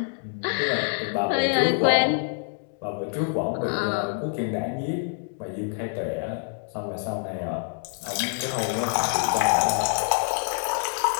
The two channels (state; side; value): silent; right; digital silence